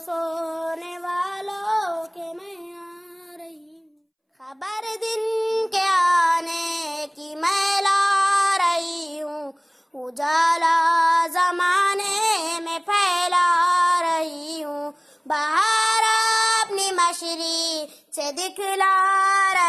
سونے والوں کے میں آ رہی ہوں، خبر دن کے آنے کی میں لا رہی ہوں، اجالا زمانے میں پھیلا رہی ہوں، بہار اپنی مشری سے دکھلا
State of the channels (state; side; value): identical; both; correlation 1.00